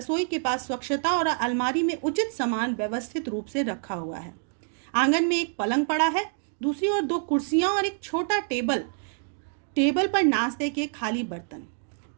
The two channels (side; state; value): left; silent; 60 dB below the other